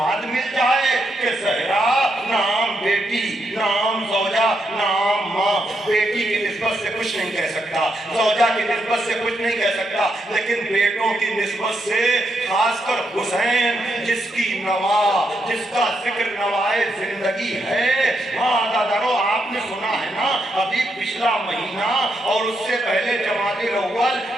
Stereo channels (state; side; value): normal; both; correlation 0.81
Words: مل جائے کہ زہرا نام بیٹی، نام زوجہ، نام ماں، بیٹی کی نسبت سے کچھ نہیں کہہ سکتا، زوجہ کی نسبت سے کچھ نہیں کہہ سکتا، لیکن بیٹوں کی نسبت سے خاص کر حسین جس کی نوا، جس کا ذکر نوائے زندگی ہے۔ ہاں دادارو، آپ نے سنا ہے نا ابھی پچھلا مہینہ اور اس سے پہلے جمادی الاول،